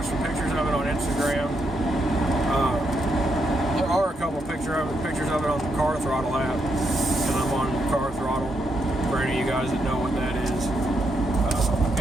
some pictures of it on Instagram. There are a couple pictures of it on the Car Throttle app, and I'm on Car Throttle for any of you guys that know what that is.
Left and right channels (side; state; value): both; normal; correlation 0.80